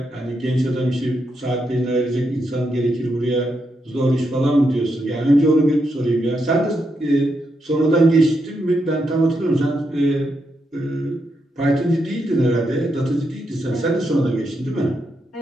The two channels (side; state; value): both; normal; correlation 0.82